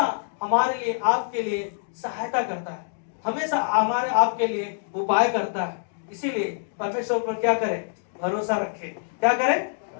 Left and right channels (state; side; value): silent; right; digital silence